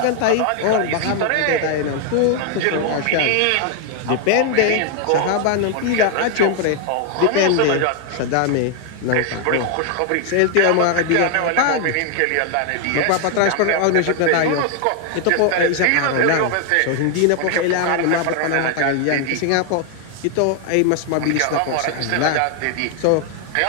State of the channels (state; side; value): different; both; correlation 0.00